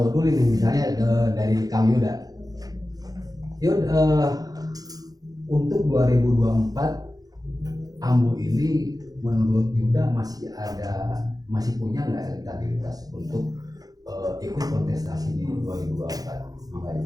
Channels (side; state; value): left; late; 0.18 ms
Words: dulu nih, misalnya dari Kang Yuda. Yud, untuk 2024 Ambu ini menurut Yuda masih punya nggak elektabilitas untuk ikut kontestasi di 2024?